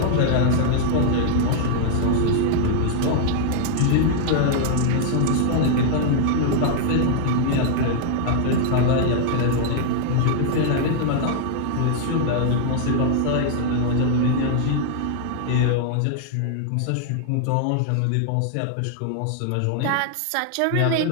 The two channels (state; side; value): different; both; correlation -0.01